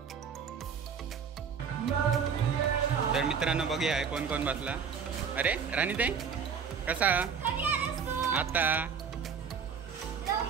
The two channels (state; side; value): quieter; left; 6.6 dB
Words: तर मित्रांनो बघूया कोण कोण बसला। अरे राणीताई कसा आता